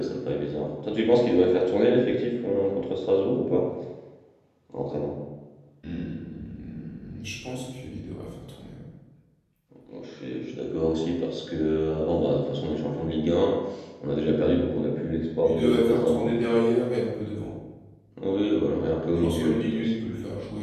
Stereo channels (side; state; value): both; identical; correlation 1.00